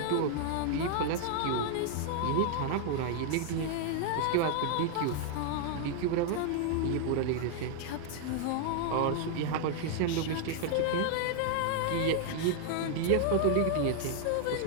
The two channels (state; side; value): different; both; correlation 0.00